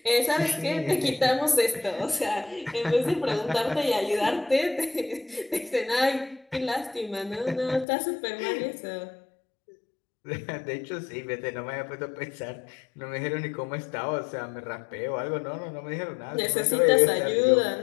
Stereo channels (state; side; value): drops out; right; at 7.9 s